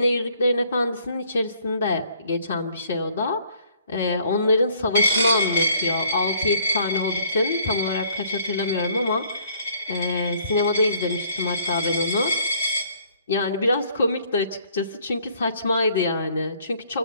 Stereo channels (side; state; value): both; inverted; correlation -0.61